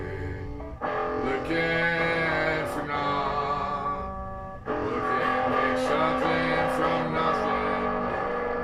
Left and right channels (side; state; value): both; identical; correlation 1.00